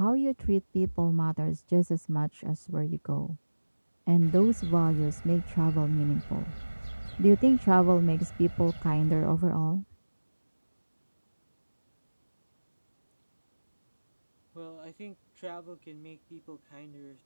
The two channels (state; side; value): inverted; both; correlation -1.00